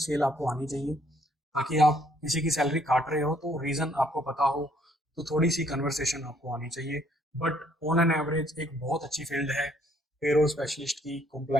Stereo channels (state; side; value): normal; both; correlation 0.66